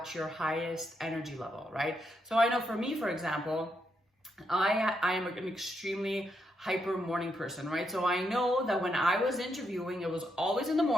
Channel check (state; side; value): normal; both; correlation 0.80